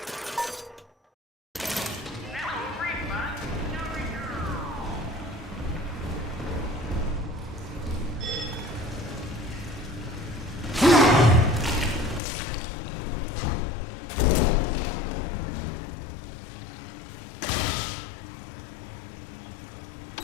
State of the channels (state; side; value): drops out; right; at 12.2 s